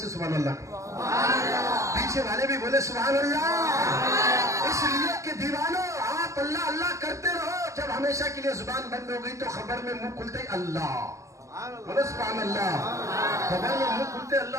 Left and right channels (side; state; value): left; late; 0.15 ms